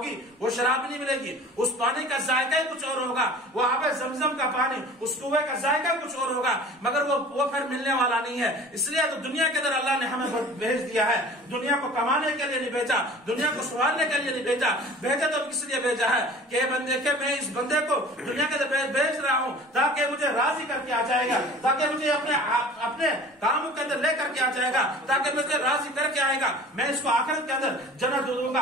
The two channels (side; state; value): both; normal; correlation 0.44